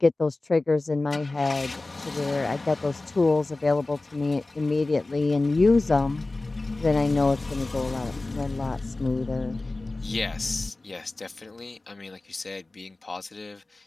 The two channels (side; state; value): right; quieter; 3.1 dB